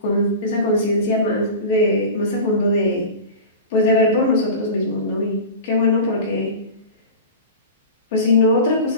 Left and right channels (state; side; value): inverted; both; correlation -0.31